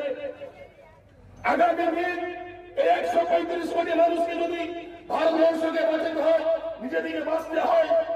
আগামী দিন এই 135 কোটি মানুষকে যদি ভারতবর্ষকে বাঁচাতে হয়, নিজেদিকে বাঁচতে হয়,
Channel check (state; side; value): identical; both; correlation 1.00